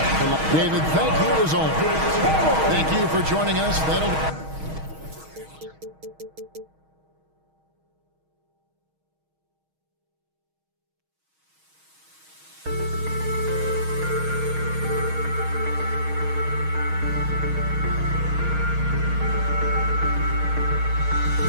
David, thank you as always. Thank you for joining us.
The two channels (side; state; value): left; late; 6.3 ms